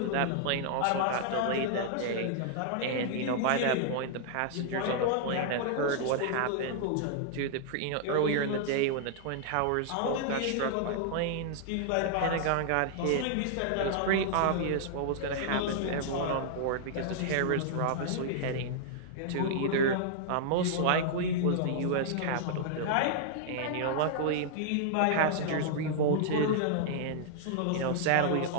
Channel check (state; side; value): different; both; correlation -0.01